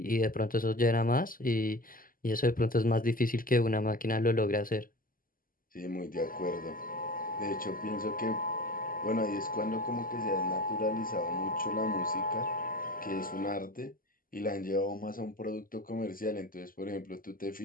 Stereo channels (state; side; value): late; right; 0.41 ms